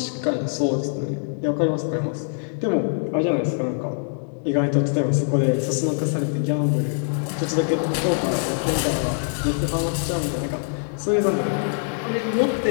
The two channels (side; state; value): right; silent; digital silence